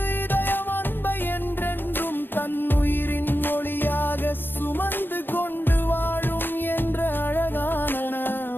இதயம் அன்பை என்றென்றும் தன்னுயிர்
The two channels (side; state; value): right; late; 0.096 ms